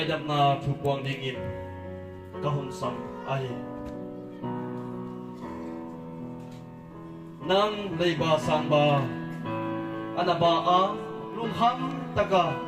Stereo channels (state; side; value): identical; both; correlation 1.00